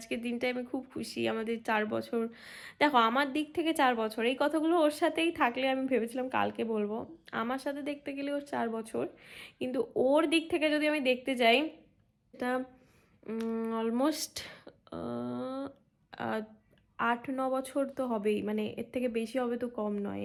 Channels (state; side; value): identical; both; correlation 1.00